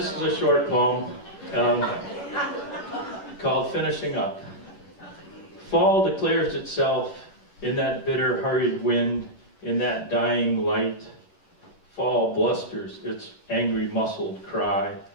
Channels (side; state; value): right; late; 10 ms